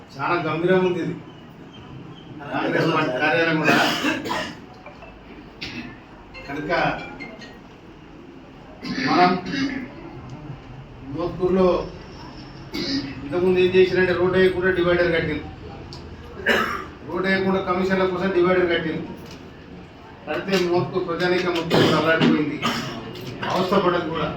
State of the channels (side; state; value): both; identical; correlation 1.00